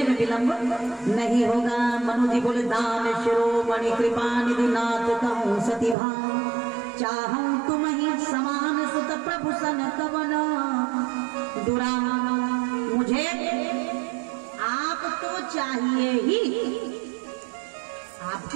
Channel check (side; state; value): left; drops out; at 6.0 s